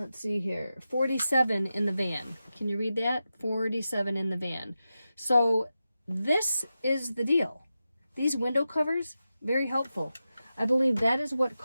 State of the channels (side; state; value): both; inverted; correlation -0.91